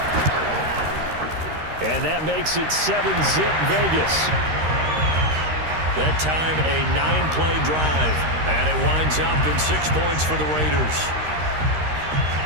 And that makes it 7-zip Vegas. That time a 9-play drive. And it winds up in 6 points for the Raiders.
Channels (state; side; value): late; left; 13 ms